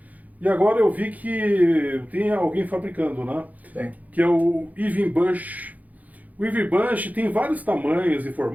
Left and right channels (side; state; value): left; late; 0.078 ms